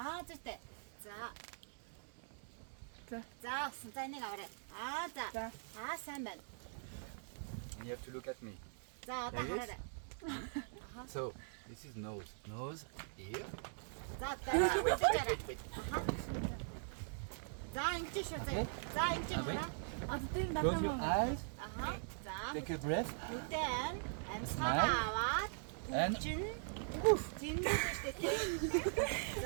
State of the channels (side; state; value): left; silent; digital silence